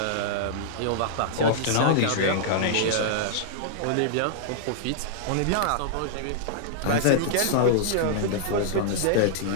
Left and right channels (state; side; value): different; both; correlation -0.01